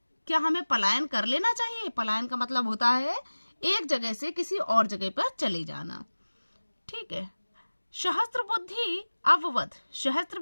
क्या हमें पलायन कर लेना चाहिए? पलायन का मतलब होता है एक जगह से किसी और जगह पर चले जाना। ठीक है। सहस्त्र बुद्धि अववद। सहस्त्र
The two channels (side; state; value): both; inverted; correlation -1.00